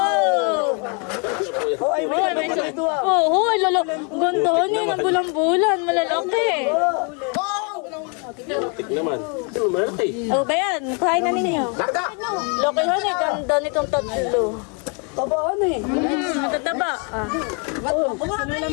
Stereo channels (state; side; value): quieter; right; 36.1 dB